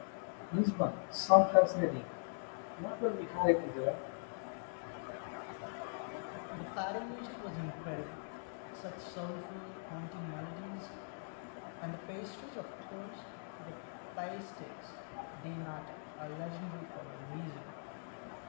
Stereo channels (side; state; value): right; silent; digital silence